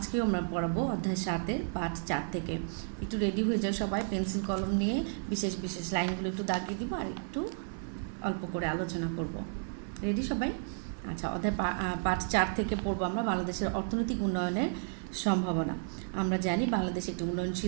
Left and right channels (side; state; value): left; silent; digital silence